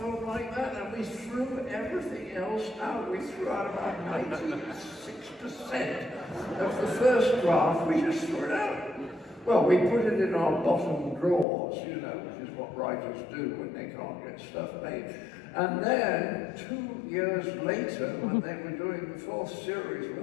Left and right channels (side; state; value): right; drops out; at 11.5 s